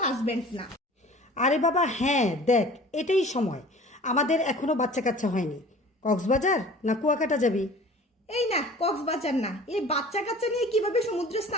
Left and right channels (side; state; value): both; normal; correlation 0.44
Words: হাজব্যান্ড না। আরে বাবা হ্যাঁ, দেখ এটাই সময়, আমাদের এখনো বাচ্চা কাচ্চা হয়নি। কক্সবাজার না কুয়াকাটা যাবি? এই না, কক্সবাজার না, এই বাচ্চা কাচ্চা নিয়ে কিভাবে সমুদ্রে